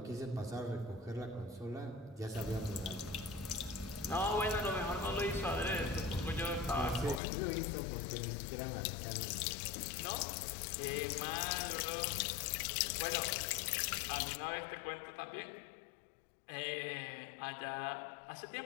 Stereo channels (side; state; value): right; drops out; at 7.2 s